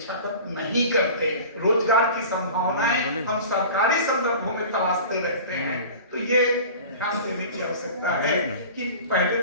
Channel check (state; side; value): inverted; both; correlation -0.39